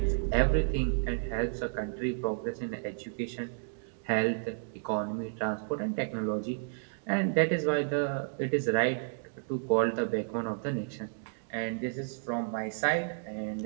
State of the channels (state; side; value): silent; left; digital silence